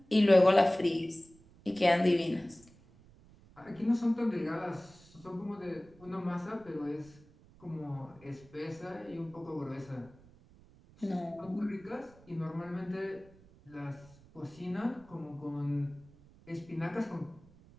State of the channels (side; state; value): right; noise; rumble, 25 dB below the sound